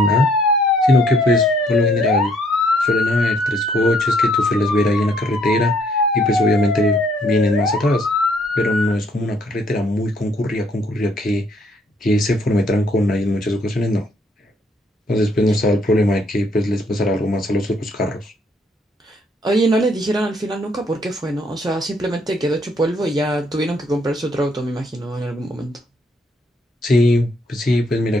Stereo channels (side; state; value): both; normal; correlation 0.67